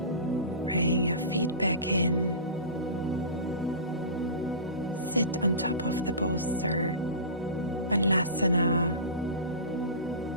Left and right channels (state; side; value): inverted; both; correlation -0.31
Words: Bring your feet back in. Sit on top of the bolster. Balasana.